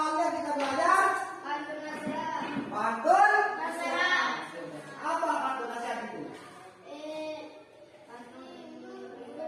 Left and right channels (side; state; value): both; identical; correlation 1.00